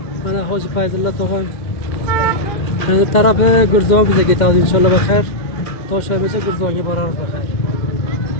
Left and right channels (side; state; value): right; late; 2.1 ms